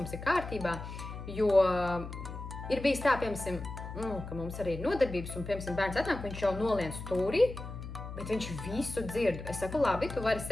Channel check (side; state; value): left; noise; hum, 9 dB below the sound